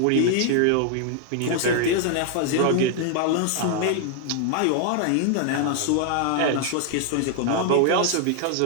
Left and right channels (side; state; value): both; different; correlation 0.00